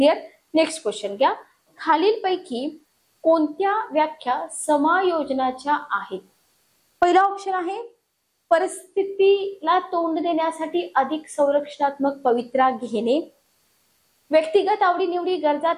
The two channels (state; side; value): identical; both; correlation 1.00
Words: नेक्स्ट क्वेश्चन घ्या. खालीलपैकी कोणत्या व्याख्या समायोजनाच्या आहेत? पहिला ऑप्शन आहे परिस्थितीला तोंड देण्यासाठी अधिक संरक्षणात्मक पवित्रा घेणे. व्यक्तिगत आवडीनिवडी, गरजा